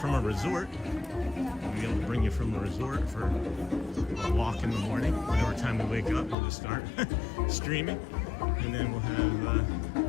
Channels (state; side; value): drops out; right; at 6.4 s